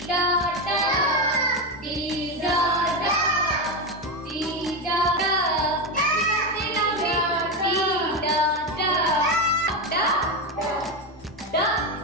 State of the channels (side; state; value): both; normal; correlation 0.13